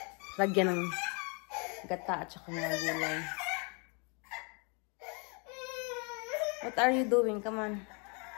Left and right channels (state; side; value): quieter; right; 34.9 dB